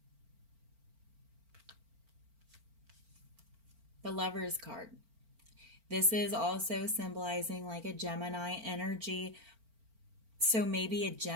Lover's card. This is also symbolizing like a Gemini energy. So maybe a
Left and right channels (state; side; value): late; left; 4.4 ms